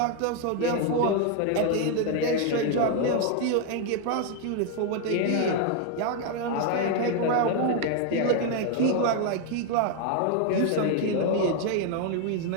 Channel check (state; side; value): different; both; correlation 0.01